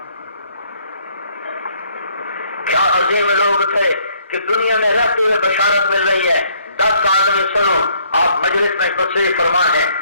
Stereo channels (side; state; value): both; inverted; correlation -0.65